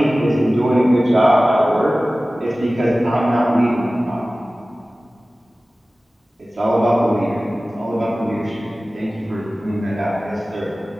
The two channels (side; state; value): both; normal; correlation 0.97